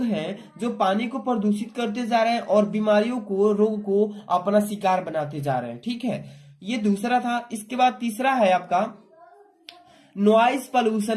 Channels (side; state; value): both; identical; correlation 1.00